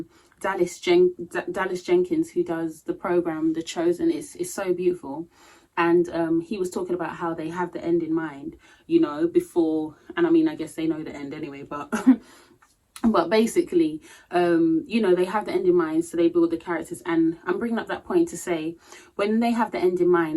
Dallas Jenkins, who does the program The Chosen. Is so beautiful, and he was talking about how they have the end in mind, you know, before, and I mean, I guess they know the end anyway, but but basically, you know, they have the end in mind, so they build the characters. And I'm bringing up that point to say, when they have the end in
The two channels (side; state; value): both; identical; correlation 1.00